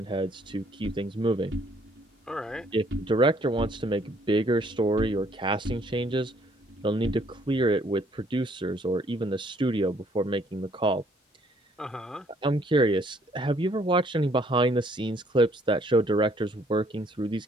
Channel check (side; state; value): both; normal; correlation 0.64